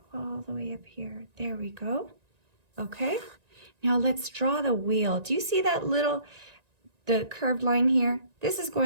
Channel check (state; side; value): late; left; 1.9 ms